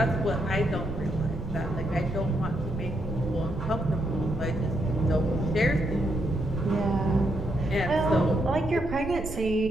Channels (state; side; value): noise; right; rumble, 9 dB below the sound